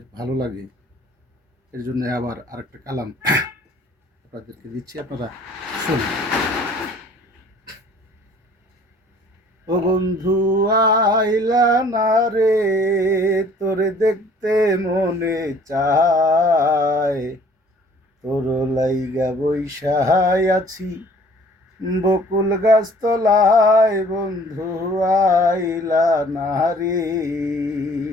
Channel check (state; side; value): normal; both; correlation 0.54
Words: ভালো লাগে, এর জন্য আবার আরেকটা কালাম আপনাদেরকে দিচ্ছি, আপনারা শুনুন। ও বন্ধু আইলা না রে, তোরে দেখতে মনে চায়, তোর লাইগা বৈশায় আছি বকুল গাছ তলায়, বন্ধু আইলা না রে।